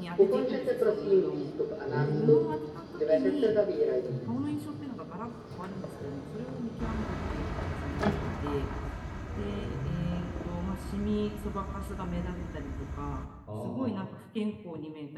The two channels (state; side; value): identical; both; correlation 1.00